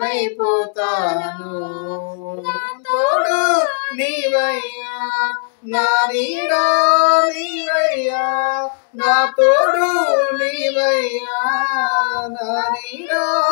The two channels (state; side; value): silent; right; 68 dB below the other